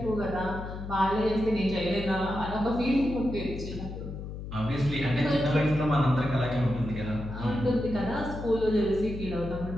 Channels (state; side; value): noise; left; hum, 8 dB below the sound